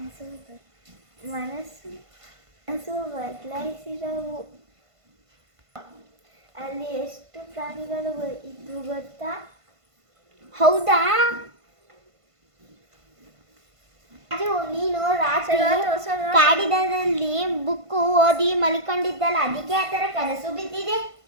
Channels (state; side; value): late; left; 1.5 ms